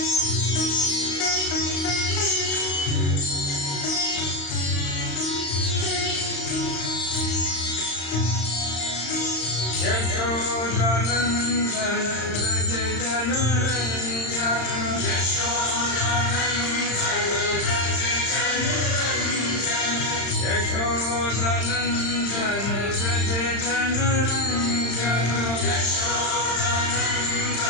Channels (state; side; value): late; right; 35 ms